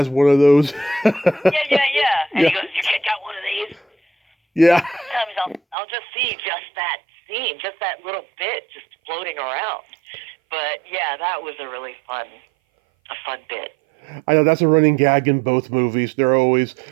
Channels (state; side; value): drops out; left; at 5.8 s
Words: one of those. Yeah. And he goes, your kid got one of these? Yeah. Sometimes I'll just see just that scene, just that little bit just floating around. But yeah, that was a really fun bit. I know that's a running gag in both movies. They're always